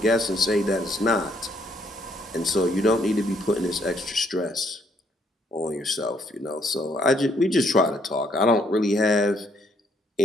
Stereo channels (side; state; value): both; normal; correlation 0.69